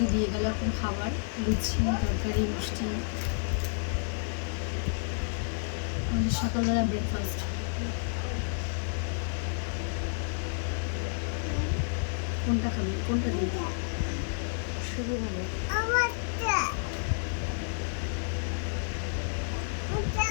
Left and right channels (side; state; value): right; silent; 57 dB below the other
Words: দিয়ে গেল এখন খাবার, লুচি তরকারি মিষ্টি, আমাদের সকালবেলা ব্রেকফাস্ট। কোনটা খাবে, কোনটা দিই? শুরু হবে।